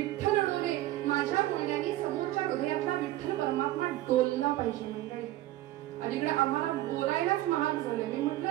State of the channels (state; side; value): quieter; left; 15.6 dB